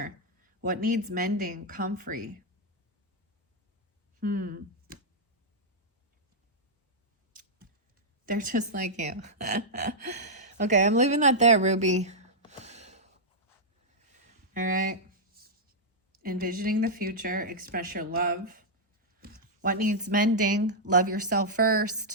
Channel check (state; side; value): normal; both; correlation -0.07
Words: What needs mending? Comfrey. They're just like you. Okay, I'm leaving that there, Ruby. All right. Envisioning the future, express your love. What needs mending? Love yourself